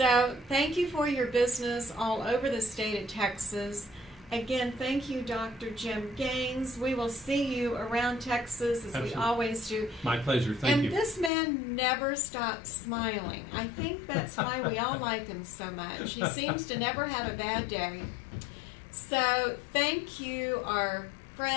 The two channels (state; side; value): drops out; right; at 11.3 s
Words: thank you for your business all over the state of Texas. Again, thank you, Dr. Jim Gaines. We will see you around Texas, as we always do. My pleasure. Thank you. And this man never stops smiling. I think that's why we all like him so much. He seems to never have a bad day. So thank you, our